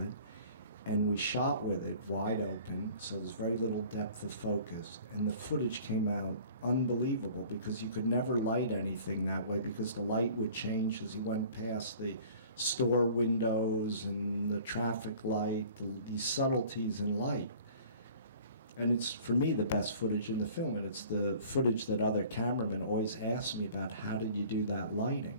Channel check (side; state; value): both; inverted; correlation -0.48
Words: it. And we shot with it wide open, so there's very little depth of focus. And the footage came out unbelievable because you could never light anything that way because the light would change as you went past the store windows and the traffic light, these subtleties in light. And it's, for me, the best footage in the film, and it's the footage that other cameramen always ask me about, how did you do that lighting?